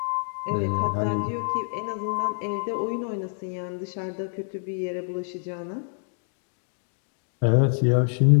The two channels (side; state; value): right; silent; digital silence